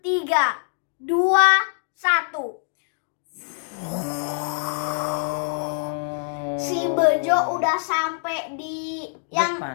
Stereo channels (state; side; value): silent; right; digital silence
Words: 3, 2, 1. Si Bejo udah sampai di